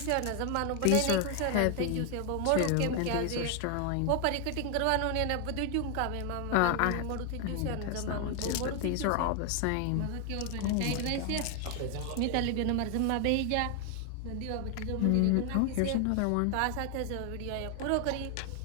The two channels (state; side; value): different; both; correlation 0.00